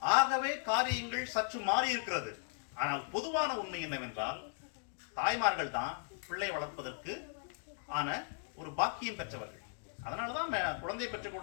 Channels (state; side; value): silent; right; 53 dB below the other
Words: ஆகவே காரியங்கள் சற்று மாறி இருக்கிறது. ஆனால் பொதுவான உண்மை என்னவென்றால் தாய்மார்கள் தான் பிள்ளை வளர்ப்பதற்கு ஆன ஒரு பாக்கியம் பெற்றவர்கள். அதனாலதான் குழந்தை பெற்றுக்